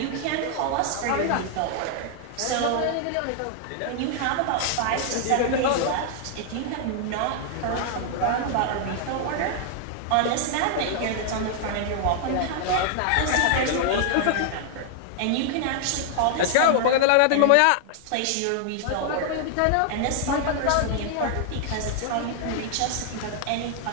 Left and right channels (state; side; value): different; both; correlation 0.00